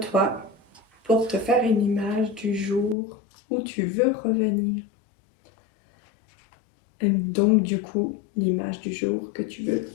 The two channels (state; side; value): drops out; right; at 3.0 s